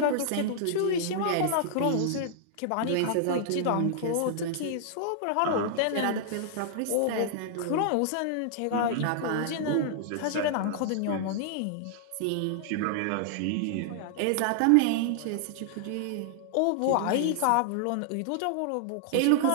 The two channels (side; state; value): both; different; correlation -0.01